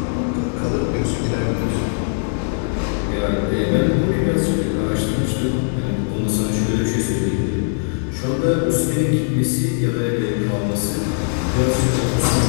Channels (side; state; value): right; silent; digital silence